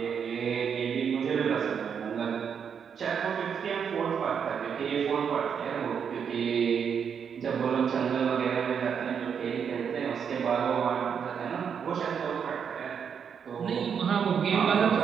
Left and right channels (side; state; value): left; quieter; 7.2 dB